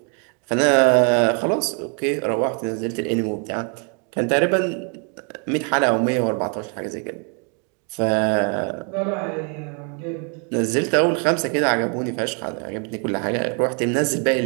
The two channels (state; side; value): quieter; left; 39.3 dB